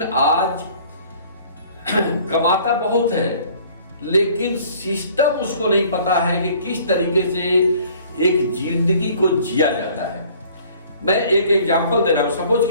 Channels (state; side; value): inverted; both; correlation -0.54